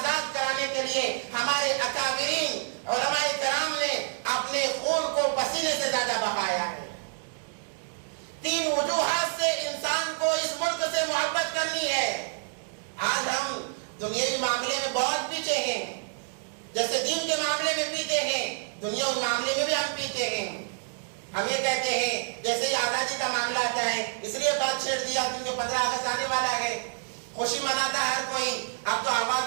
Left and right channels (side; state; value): left; silent; digital silence